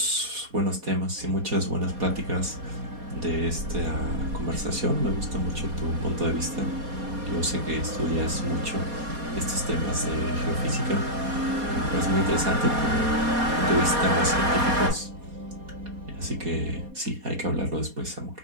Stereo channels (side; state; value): left; late; 4.2 ms